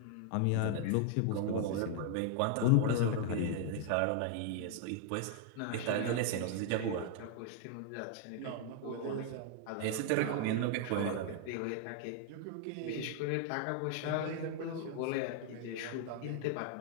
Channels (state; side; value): different; both; correlation 0.00